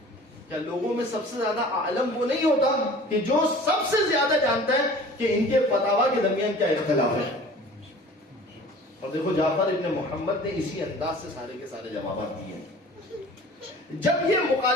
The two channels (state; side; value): normal; both; correlation 0.45